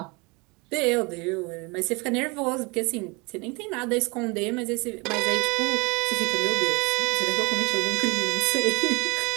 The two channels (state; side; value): quieter; left; 28.0 dB